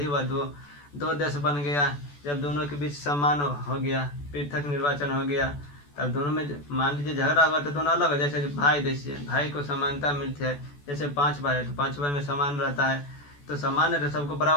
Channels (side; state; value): right; late; 14 ms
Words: हुआ, दो देश बन गया। जब दोनों के बीच सम्मान हो गया, पृथक निर्वाचन हो गया, तब दोनों में मान लीजिए झगड़ा होगा तो दोनों अलग हो। जैसे भाई, जैसे भाई को समानता मिलती है, जैसे 5 भाई है तो 5 भाई में समान रहता है, तो समान है तो सबको